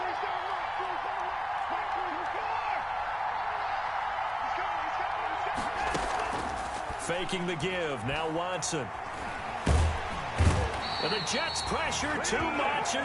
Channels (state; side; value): identical; both; correlation 1.00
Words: Faking the give. Now Watson. And the Jets pressure too much